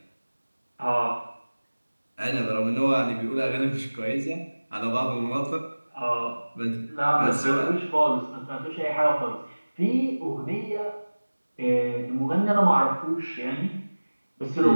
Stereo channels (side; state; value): both; inverted; correlation -1.00